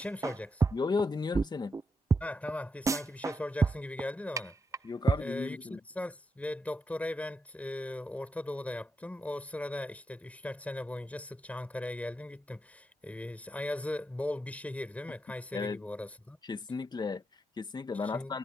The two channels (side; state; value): both; normal; correlation 0.84